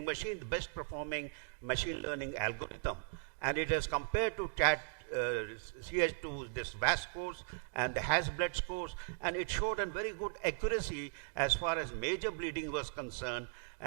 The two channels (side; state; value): left; silent; digital silence